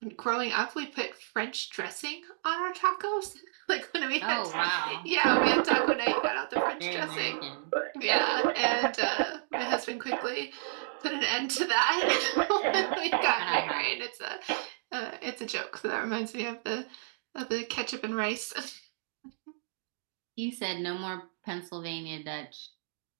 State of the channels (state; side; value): silent; left; digital silence